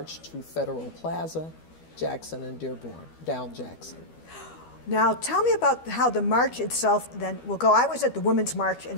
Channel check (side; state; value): right; late; 12 ms